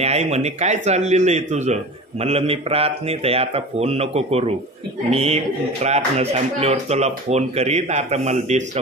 आई म्हणे काय चाललेलं आहे तुझं? म्हणलं मी प्रार्थनेत आहे, आता फोन नको करू. मी प्रार्थना संपल्यावर तुला फोन करीन, आता मला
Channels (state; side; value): normal; both; correlation 0.34